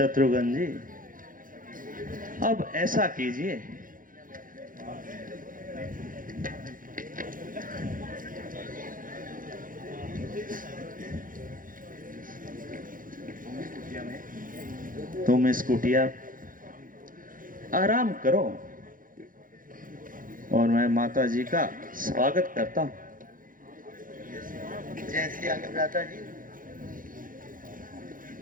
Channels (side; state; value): left; late; 0.40 ms